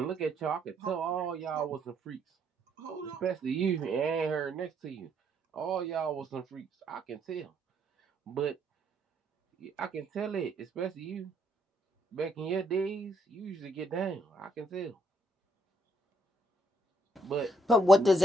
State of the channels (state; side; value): normal; both; correlation 0.72